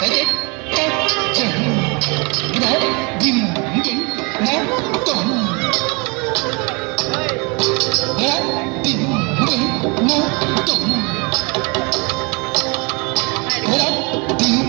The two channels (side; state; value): left; quieter; 30.1 dB